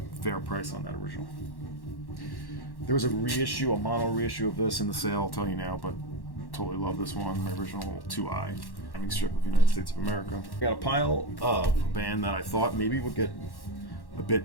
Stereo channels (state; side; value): late; right; 1.1 ms